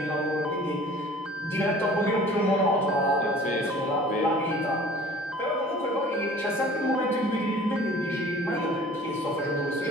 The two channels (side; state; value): both; normal; correlation 0.47